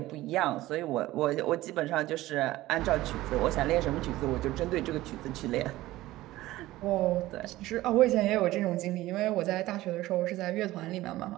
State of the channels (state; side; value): quieter; left; 16.8 dB